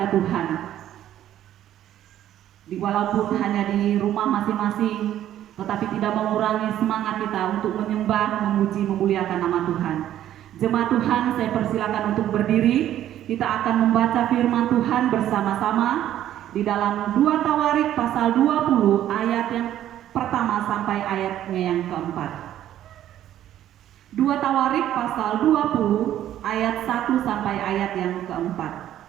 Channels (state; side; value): quieter; left; 11.9 dB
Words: Tuhan. Walaupun hanya di rumah masing-masing, tetapi tidak mengurangi semangat kita untuk menyembah, memuji, memuliakan nama Tuhan. Jemaat Tuhan, saya persilakan untuk berdiri. Kita akan membaca firman Tuhan bersama-sama di dalam 2 Tawarik pasal 20 ayat yang pertama sampai ayatnya yang keempat. 2 Tawarik pasal 20 ayat 1 sampai ayat yang keempat.